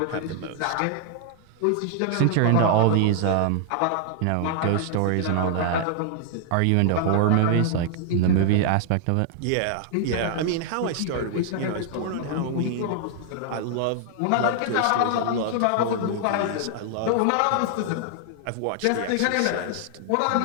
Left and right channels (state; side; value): different; both; correlation 0.00